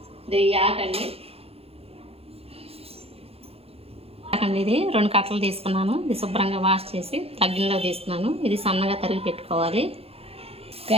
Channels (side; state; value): left; late; 0.29 ms